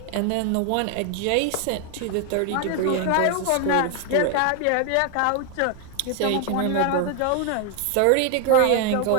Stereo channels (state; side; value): different; both; correlation 0.01